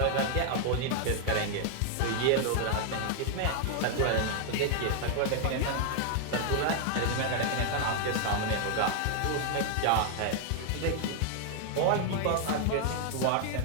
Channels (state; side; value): different; both; correlation 0.00